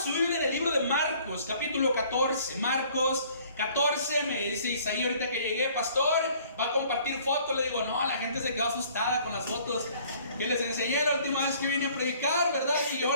Biblia en el libro de Marcos, capítulo 14. Marcos 14, me dice Isaí ahorita que llegué, pastor, va a compartir fotos. Le digo, no, la gente se quedó asustada con las fotos que les enseñé la última vez que vine a predicar, ¿verdad? Y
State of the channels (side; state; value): both; inverted; correlation -0.56